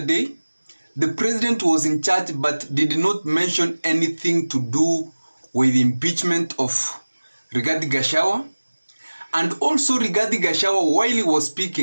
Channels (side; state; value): both; inverted; correlation -1.00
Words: the president was in charge but did not mention anything to do with the impeachment of Rigathi Gachagua. And also Rigathi Gachagua, while he was